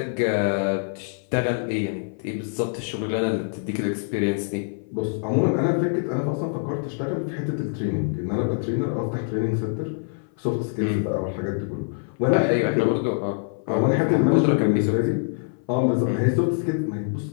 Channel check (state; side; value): silent; right; 58 dB below the other